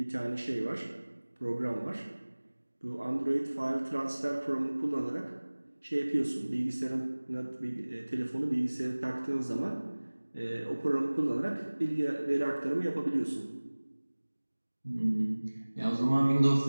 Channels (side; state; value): both; inverted; correlation -1.00